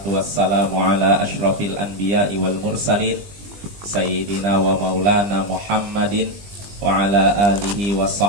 wassalamu ala ashrafil anbiya'i wal mursalin Sayyidina wa maulana Muhammadin wa ala alihi wa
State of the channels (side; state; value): left; late; 20 ms